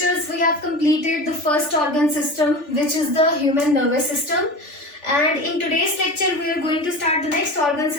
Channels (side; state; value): right; late; 3.4 ms